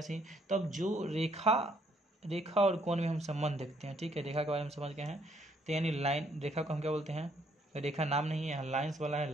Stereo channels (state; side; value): normal; both; correlation 0.68